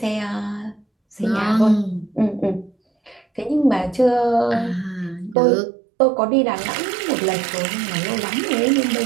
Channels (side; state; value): left; drops out; at 5.4 s